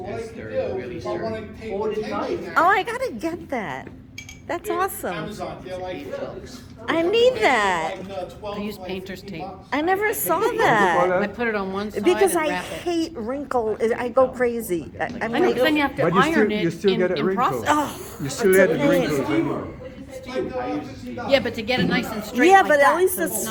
what I Yes, can they're do, really if I wanna sturdy. take Hold the it tight. tension oh, out. I gotta get that. That's awesome. Amazon, they're like trucks. I need that. Like, 12, I use like painter's 15 tape. bucks. I never saw Call that. I that? put it on one side Because and I wrap it. hate wrinkle, I go crazy. I'm I know, 'cause then like, you have to But you still, iron you it still get a in wrinkle. process. oh, You still it's get a the pain. wrinkles. anyway. Yeah, but to get it nice and straight Yeah, like but at that, least so it's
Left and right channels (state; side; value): identical; both; correlation 1.00